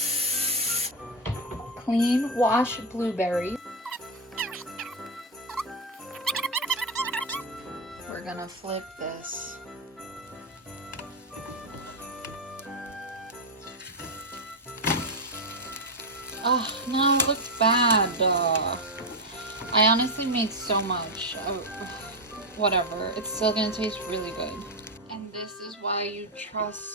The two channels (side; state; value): both; normal; correlation 0.06